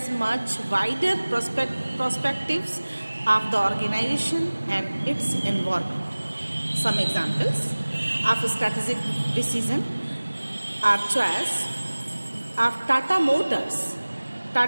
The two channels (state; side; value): inverted; both; correlation -1.00